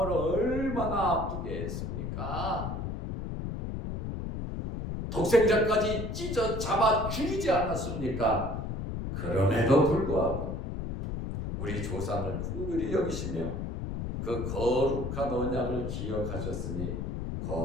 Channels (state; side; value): noise; left; rumble, 4 dB below the sound